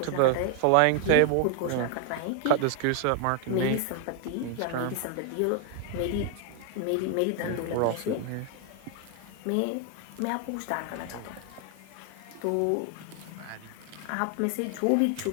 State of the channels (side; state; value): both; different; correlation 0.00